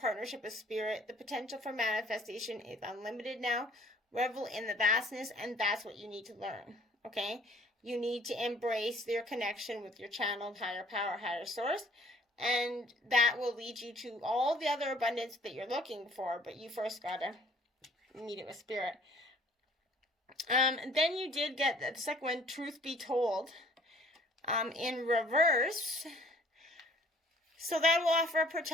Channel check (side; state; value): both; normal; correlation 0.57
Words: with spirit. The potential for manifestation is unlimited now. Revel in the vastness, and that's what you need to learn, okay? You need to embrace your connection with your channeled higher power, higher source, and that will lead you to all the other abundance that you're looking for, but you first got to meet it with spirit. Then you did get the second one, truth be told, in reverse. So that will offer a